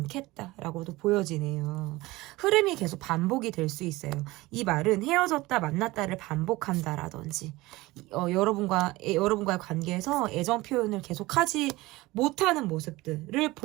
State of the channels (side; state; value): left; quieter; 20.0 dB